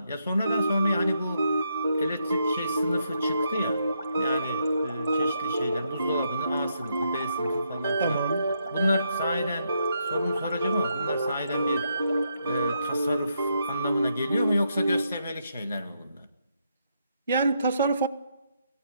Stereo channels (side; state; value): both; inverted; correlation -0.78